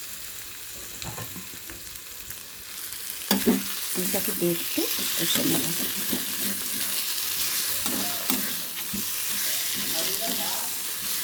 আলুটাকে দিয়ে একটু কষে নেব।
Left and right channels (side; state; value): both; identical; correlation 1.00